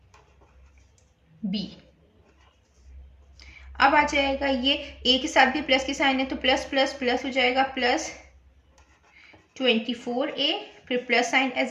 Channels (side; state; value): both; identical; correlation 1.00